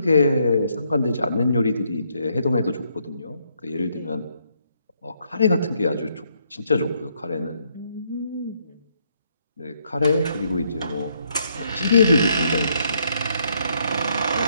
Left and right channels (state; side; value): inverted; both; correlation -0.73